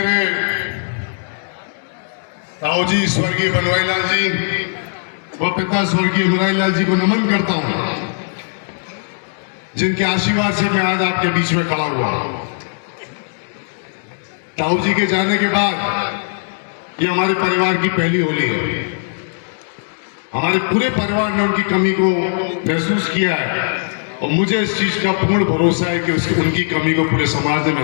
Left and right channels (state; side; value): silent; right; digital silence